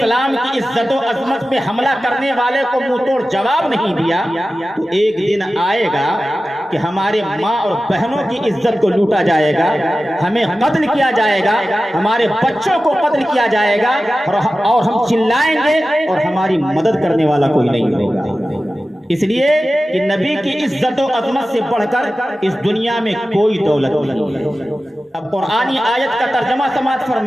کی عزت و عظمت پہ حملہ کرنے والے کو منہ توڑ جواب نہیں دیا تو ایک دن آئے گا کہ ہمارے ماں اور بہنوں کی عزت کو لوٹا جائے گا، ہمیں قتل کیا جائے گا، ہمارے بچوں کو قتل کیا جائے گا، اور ہم چلائیں گے اور ہماری مدد کرنے والا کوئی نہیں ہوگا. اس لیے کہ نبی کی عزت و عظمت سے بڑھ کر اس دنیا میں کوئی دولت نہیں. اب قرآنی آیت کا ترجمہ سماعت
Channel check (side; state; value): both; normal; correlation 0.94